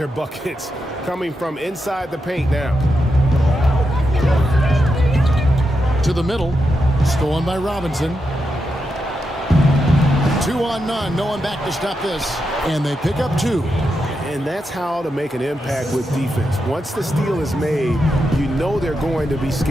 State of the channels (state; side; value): normal; both; correlation 0.86